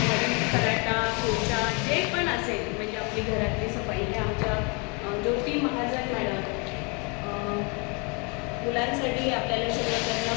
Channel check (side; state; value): right; quieter; 32.2 dB